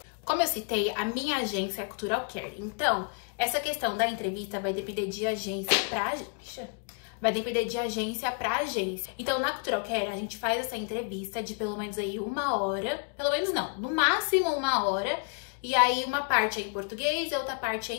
Como eu citei, a minha agência é a Cultural Care. Então, essa questão da entrevista vai depender de agência pra agência. Vai depender de agência pra agência. Então, na Cultural Care, a gente faz essa entrevista de pelo menos aí 1 hora. Pelo menos não, no máximo 1 hora. E aí, uma parte é em português e a outra parte é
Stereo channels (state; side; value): quieter; right; 38.6 dB